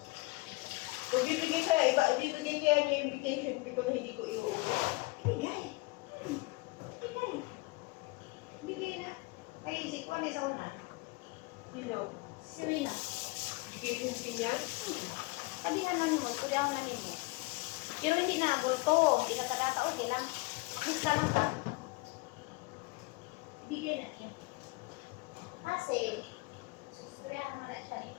Kung bibigay kaya, bibigay kaya niya yung vacation fee ko na hindi ko iuwi. Ibigay. Ibigay. Ibigay na. Ay, si Kwan sa una. Sino? Si Rina. Vacation fee niya? Sabi nga namin mo, pwede ako namin mo. Pero hindi na, bulto. Hindi ka kadata, okay lang. Lista lang ka. Ibigay na niya. Kasi, susustriyahan mo na siya ni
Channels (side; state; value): right; quieter; 23.9 dB